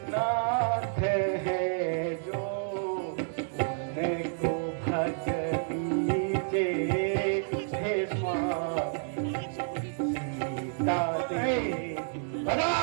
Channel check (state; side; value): silent; left; digital silence